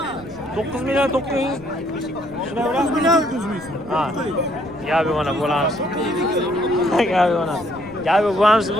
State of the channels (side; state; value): left; noise; rumble, 21 dB below the sound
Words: 9 million 900. Shunday 9 million 100 ming. Ha. Gap yo'q mana bo'lamiz. Gap yo'q mana. Gap yo'q bo'lamiz.